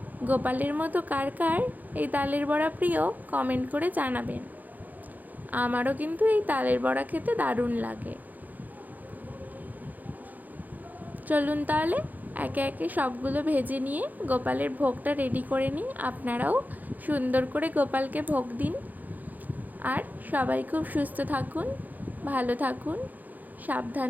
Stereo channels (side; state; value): left; late; 0.082 ms